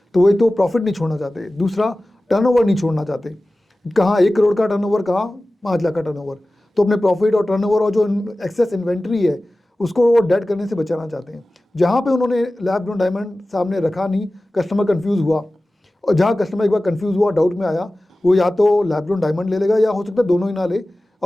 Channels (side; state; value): both; normal; correlation 0.96